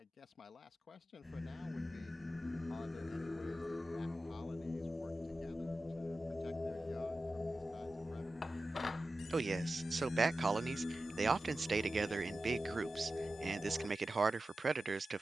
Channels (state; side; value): normal; both; correlation 0.94